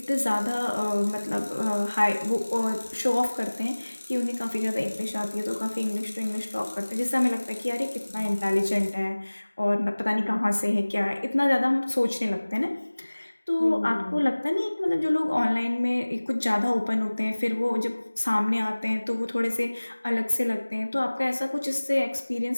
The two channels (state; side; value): inverted; both; correlation -1.00